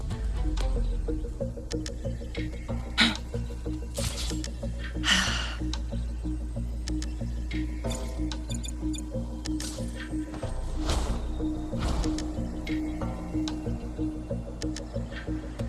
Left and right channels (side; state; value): both; identical; correlation 1.00